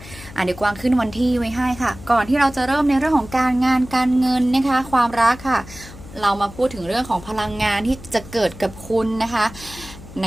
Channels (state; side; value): noise; left; hum, 17 dB below the sound